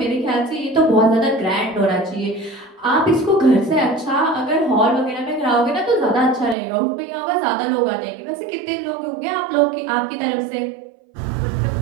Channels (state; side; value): drops out; left; at 6.6 s